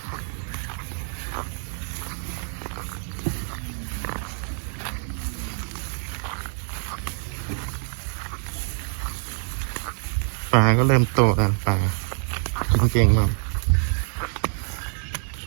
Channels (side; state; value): left; silent; 61 dB below the other